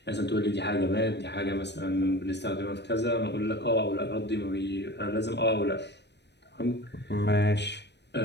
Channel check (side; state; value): right; late; 0.50 ms